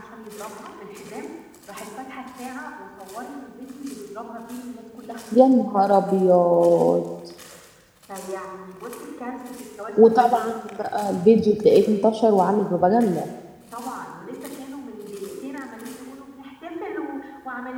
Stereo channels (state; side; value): identical; both; correlation 1.00